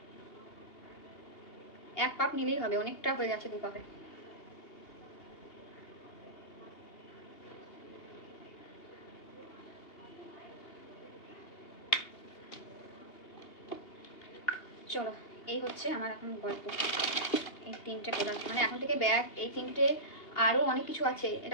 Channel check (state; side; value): late; right; 2.8 ms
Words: এক পাপ নিলেই হবে, অনেকটা হয়ে গেছে 2 পাপে। চলো, এই হচ্ছে আমার এখন গল্প। এই 3টে প্রোডাক্ট, মানে এখন থেকে ব্যাগ, এই 3টে, আরও অনেক কিছু আছে।